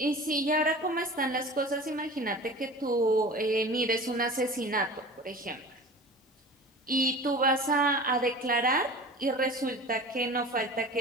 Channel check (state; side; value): normal; both; correlation 0.38